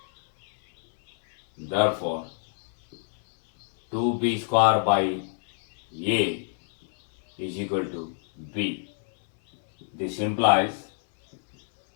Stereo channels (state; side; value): silent; right; digital silence